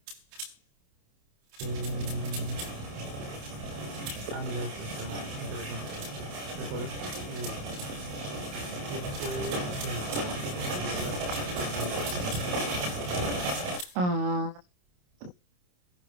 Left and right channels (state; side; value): late; left; 28 ms